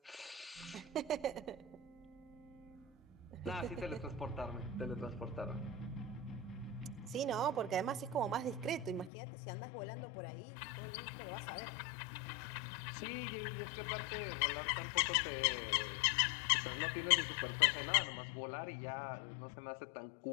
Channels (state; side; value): drops out; right; at 9.1 s